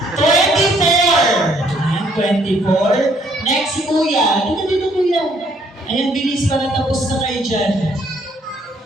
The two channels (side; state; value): both; normal; correlation 0.66